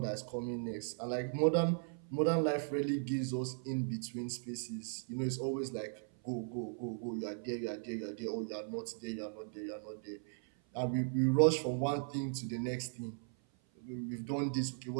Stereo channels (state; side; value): silent; left; 53 dB below the other